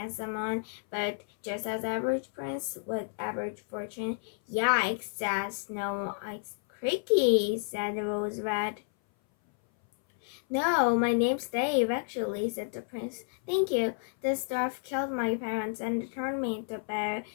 one, but just as average prince with average fortune. Yikes, said Snow White. Creaky, said Rose Red. No, my name's Dave, actually, said the prince. Thank you. This dwarf killed my parents and turned me into a bear.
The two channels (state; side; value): silent; right; 57 dB below the other